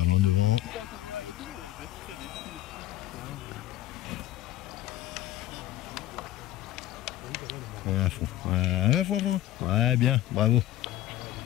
loin devant. Et à fond. À fond. Ouais, bien, bravo.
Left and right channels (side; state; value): right; quieter; 14.3 dB